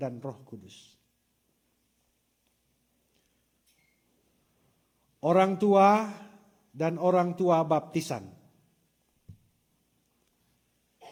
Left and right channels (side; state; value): both; identical; correlation 1.00